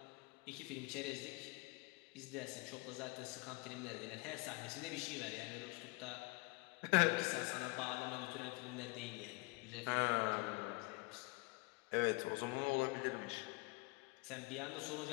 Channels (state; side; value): quieter; right; 26.2 dB